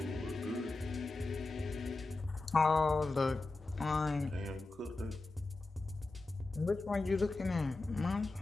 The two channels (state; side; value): quieter; right; 3.3 dB